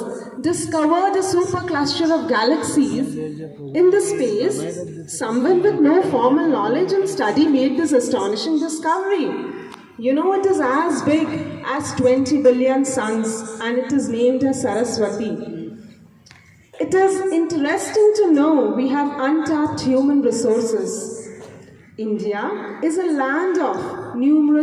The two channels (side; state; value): both; identical; correlation 1.00